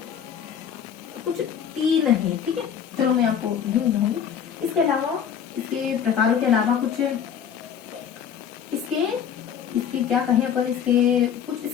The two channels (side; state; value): right; quieter; 8.3 dB